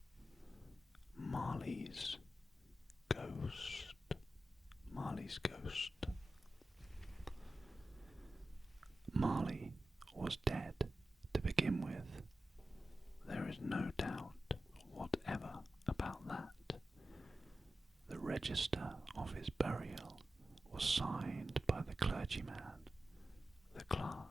Marley's Ghost. Marley's Ghost. Marley was dead to begin with. There is no doubt whatever about that. The register of his burial was signed by the clergyman, the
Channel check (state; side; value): normal; both; correlation 0.93